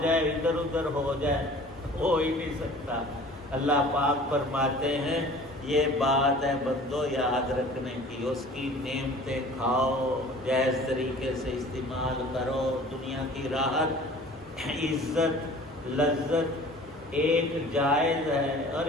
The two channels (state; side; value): normal; both; correlation 0.46